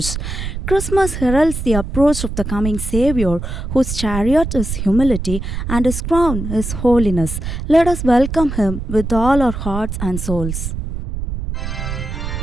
Christmas heralds the approach of the coming Savior, whose chariot is humility and his crown is holiness. Let us welcome him with all our hearts and souls. King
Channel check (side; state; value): right; noise; rumble, 5 dB below the sound